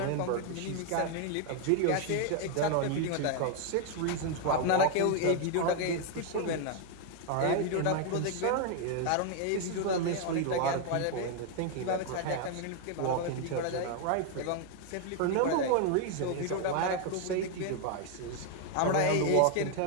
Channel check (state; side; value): different; both; correlation 0.00